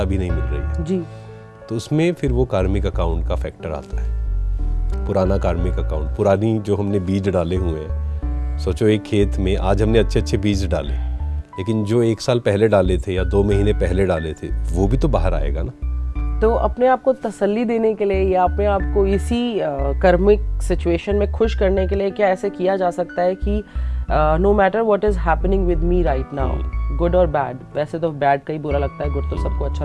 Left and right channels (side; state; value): both; identical; correlation 1.00